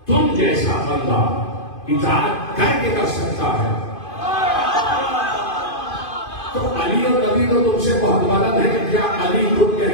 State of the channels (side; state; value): right; late; 2.5 ms